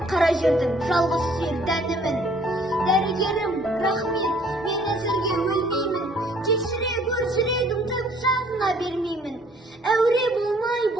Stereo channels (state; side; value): normal; both; correlation 0.59